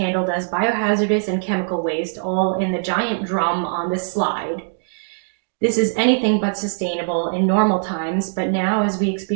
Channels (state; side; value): silent; left; digital silence